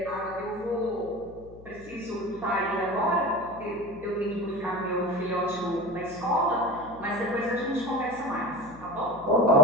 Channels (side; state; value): left; noise; hum, 20 dB below the sound